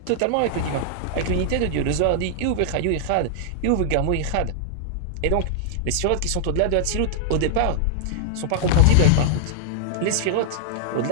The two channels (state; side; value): different; both; correlation -0.01